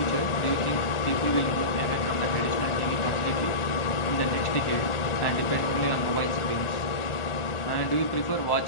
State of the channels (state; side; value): late; right; 1.4 ms